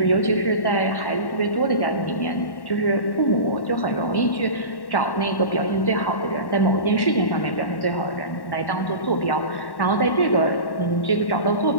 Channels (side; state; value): right; late; 1.1 ms